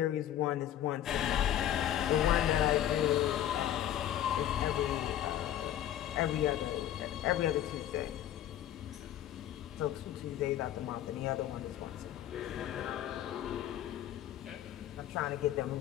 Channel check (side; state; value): right; quieter; 11.7 dB